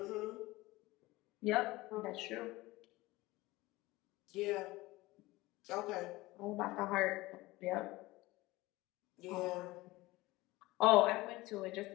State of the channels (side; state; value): right; quieter; 19.8 dB